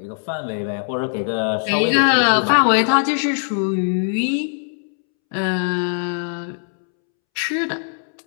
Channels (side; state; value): right; silent; 65 dB below the other